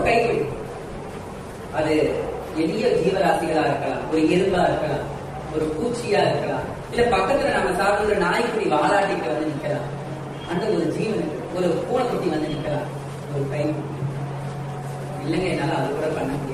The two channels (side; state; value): both; identical; correlation 1.00